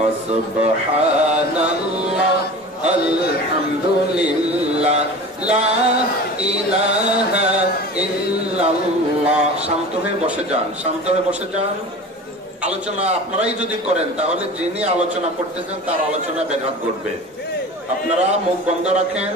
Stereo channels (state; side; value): normal; both; correlation 0.36